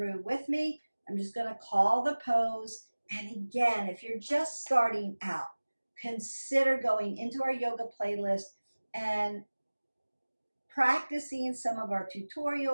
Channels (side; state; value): both; inverted; correlation -1.00